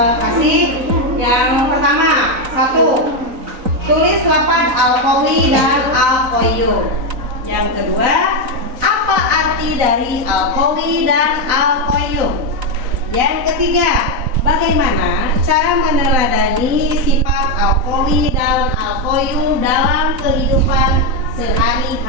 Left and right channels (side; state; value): left; late; 4.0 ms